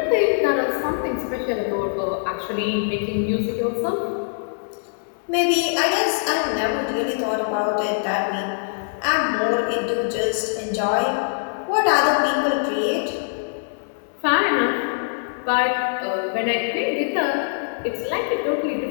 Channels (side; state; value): right; silent; digital silence